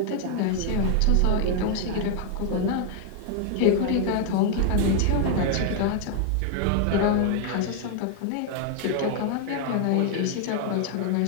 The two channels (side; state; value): both; different; correlation 0.00